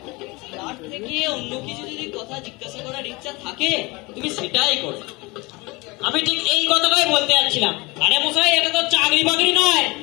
তার থেকে অন্য কিছু যদি কথা জিজ্ঞাসা করার ইচ্ছা থাকে তুমি সেটাই করো। আমি ঠিক এই কথাটাই বলতে যাচ্ছিলাম। আরে মশাই, এটা তো চাকরি বাকরি নয়,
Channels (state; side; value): quieter; right; 24.7 dB